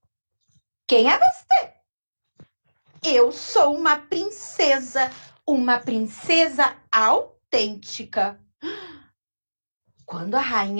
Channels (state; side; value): inverted; both; correlation -1.00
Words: quem é você? Eu sou uma princesa autêntica. Quando a